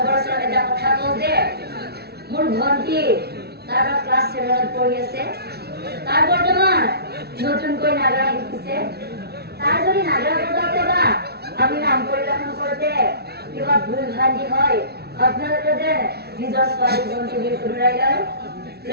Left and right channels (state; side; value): late; left; 0.47 ms